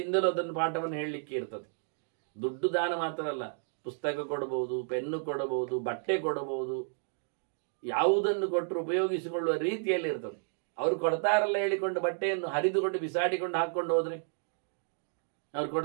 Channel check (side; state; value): left; silent; digital silence